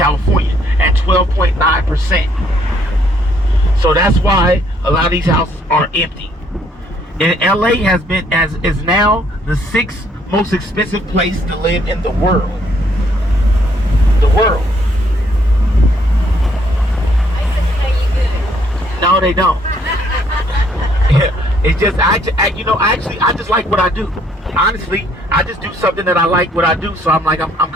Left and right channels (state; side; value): normal; both; correlation 0.67